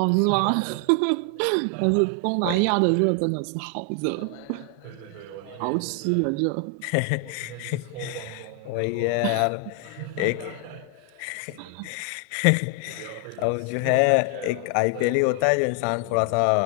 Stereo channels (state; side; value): different; both; correlation 0.00